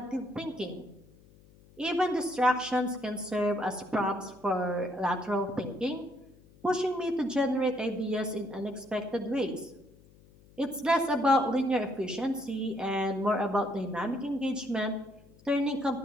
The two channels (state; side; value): noise; left; hum, 26 dB below the sound